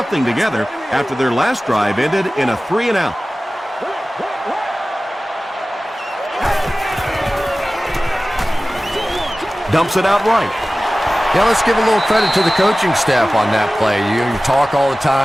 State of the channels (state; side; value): normal; both; correlation 0.97